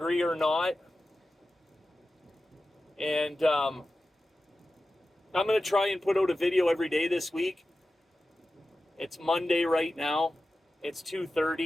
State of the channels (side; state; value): both; normal; correlation 0.94